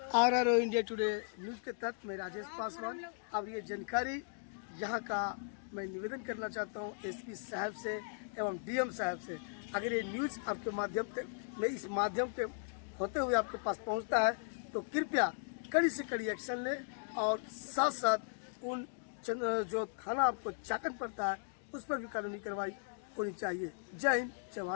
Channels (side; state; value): right; silent; digital silence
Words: RRO इंडिया टुडे न्यूज के तहत मैं राजेश पासवान। अब ये जानकारी यहाँ का मैं निवेदन करना चाहता हूँ SP साहब से एवं DM साहब से। अगर ये न्यूज़ आपके माध्यम से मैं इस माध्यम के होते हुए आपके पास पहुँचता है तो कृपया कड़ी से कड़ी एक्शन लें और साथ साथ उन जो थाना आपको चाकन पड़ता है उस पर भी कानूनी कार्रवाई होनी चाहिए। जय हिंद, जय